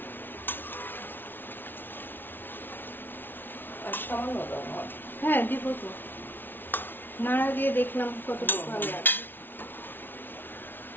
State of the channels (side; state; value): right; late; 0.098 ms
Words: আর সামান্য দাও আমার। হ্যাঁ দিব তো, নাড়া দিয়ে দেখলাম কতটুকু ভালো লাগবে।